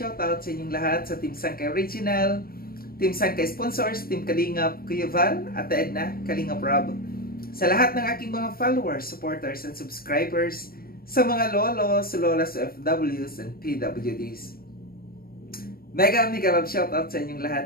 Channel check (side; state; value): right; late; 0.43 ms